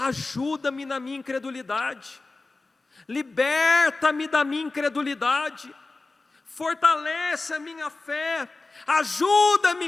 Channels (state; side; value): quieter; right; 3.5 dB